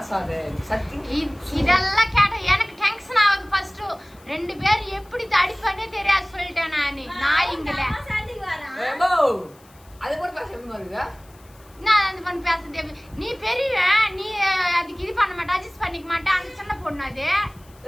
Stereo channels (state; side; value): noise; left; hiss, 28 dB below the sound